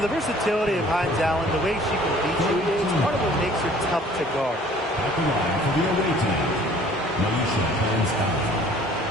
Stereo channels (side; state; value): both; normal; correlation 0.53